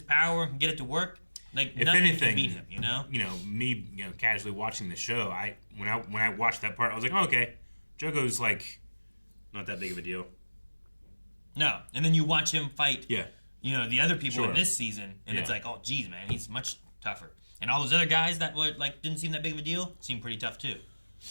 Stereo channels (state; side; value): inverted; both; correlation -1.00